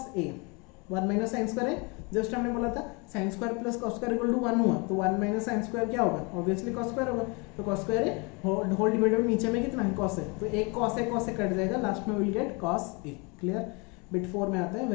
a, 1 minus sin square a, just हमने बोला था sin square plus cos square equal to 1 हुआ, तो 1 minus sin square क्या होगा, obviously cos square होगा, तो cos स्क्वायर है होल डिवाइडेड नीचे में कितना है cos है, तो एक cos है कट जाएगा, लास्ट में will get cos a। Clear. Bit 4 में आते हैं,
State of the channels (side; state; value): right; quieter; 30.3 dB